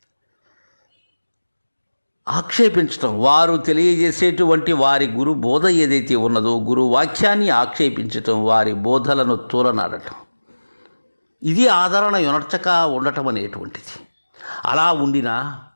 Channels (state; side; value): inverted; both; correlation -1.00